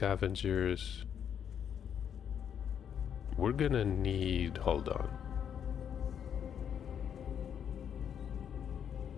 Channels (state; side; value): quieter; right; 8.4 dB